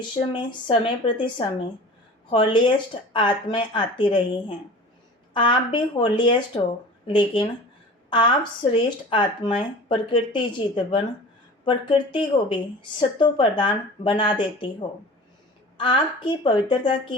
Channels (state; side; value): normal; both; correlation 0.39